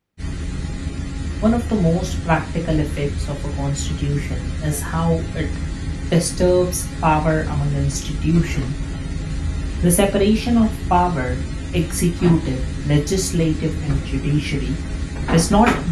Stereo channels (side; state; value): both; identical; correlation 1.00